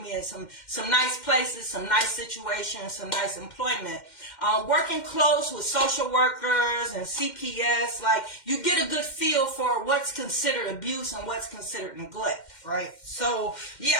in some nice places, some nice situations, some nice employment. Working close with social workers and CPS, like you get a good feel for what's considered abuse and what's considered neglect, right? So yeah,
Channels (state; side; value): late; right; 2.1 ms